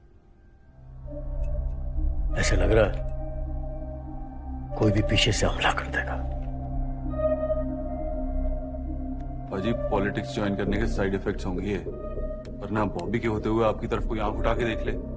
ऐसे लग रहा है कोई भी पीछे से हमला कर देगा। अजी, पॉलिटिक्स ज्वाइन करने के साइड इफेक्ट्स होंगे ये, वरना बॉबी के होते हुए आपकी तरफ कोई आंख उठा के देख ले,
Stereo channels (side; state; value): both; identical; correlation 1.00